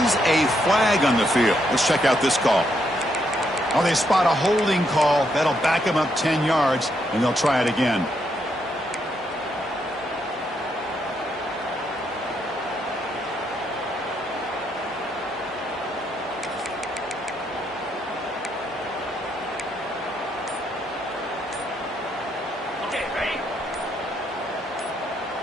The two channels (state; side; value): normal; both; correlation 0.77